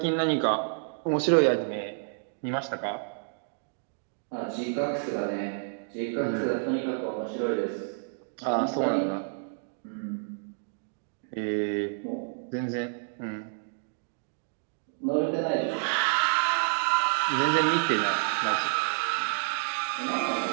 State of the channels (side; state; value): left; silent; digital silence